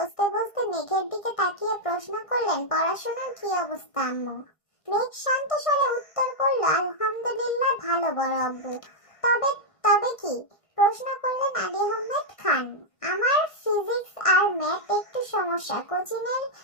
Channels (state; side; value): late; right; 1.5 ms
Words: বসতে মেঘের দিকে তাকিয়ে প্রশ্ন করলেন, পড়াশোনার কি অবস্থা আম্মু? মেঘ শান্ত স্বরে উত্তর করল, আলহামদুলিল্লাহ ভালো বড় আব্বু। তবে তবে কি? প্রশ্ন করলেন আলী আহমেদ খান। আমার ফিজিক্স আর ম্যাথ একটু সমস্যা, কোচিং এর